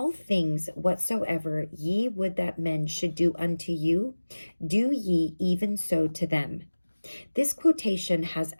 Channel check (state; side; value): inverted; both; correlation -1.00